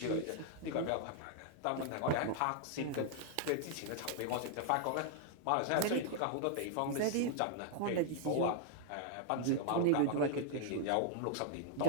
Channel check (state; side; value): different; both; correlation -0.01